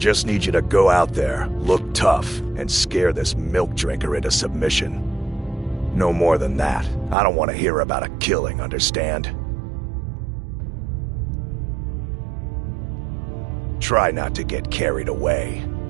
need you to go out there, look tough, and scare this milk drinker into submission. No more than that. I don't want to hear about a killing, understand? Try not to get carried away.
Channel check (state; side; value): drops out; left; at 7.2 s